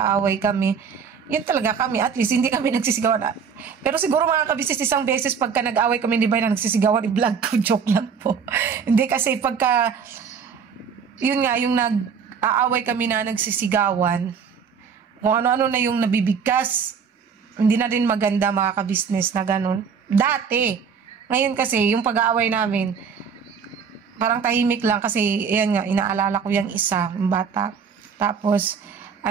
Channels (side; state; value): left; quieter; 6.5 dB